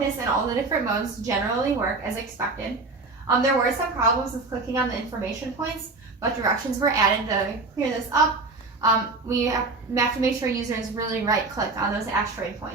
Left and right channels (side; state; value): left; quieter; 3.6 dB